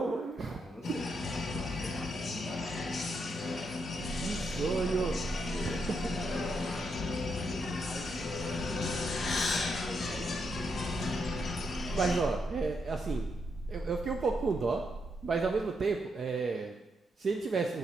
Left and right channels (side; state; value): both; normal; correlation 0.80